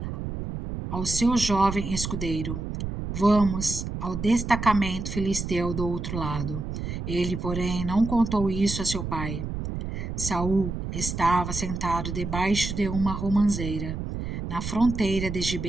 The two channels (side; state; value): right; noise; rumble, 5 dB below the sound